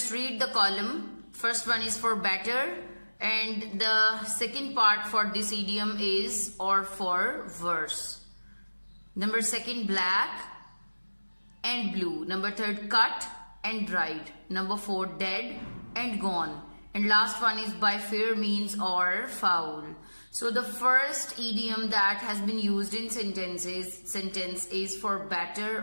read the column. First one is for better, and the second part for this idiom is or for verse. Number second, black and blue. Number third, cut and dried. Number four, dead and gone. And last one is by fair means or foul. So the first idiom that has been used in sentence is for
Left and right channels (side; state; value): both; inverted; correlation -1.00